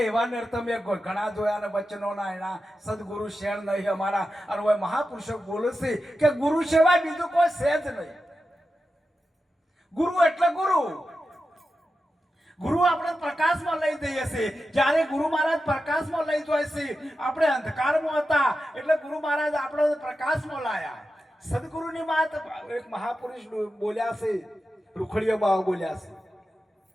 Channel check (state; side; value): normal; both; correlation 0.91